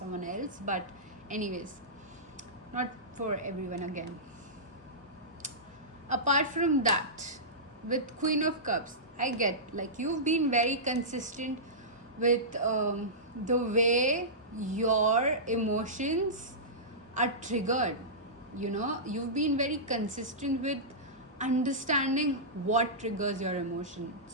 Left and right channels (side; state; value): both; normal; correlation -0.17